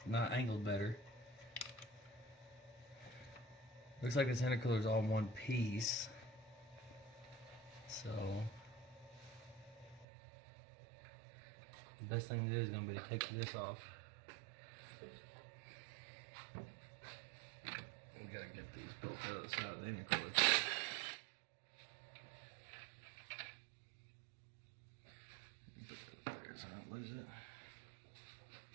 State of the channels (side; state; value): left; drops out; at 10.1 s